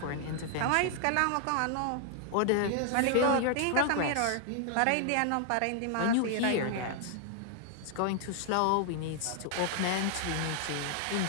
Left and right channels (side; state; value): both; different; correlation 0.00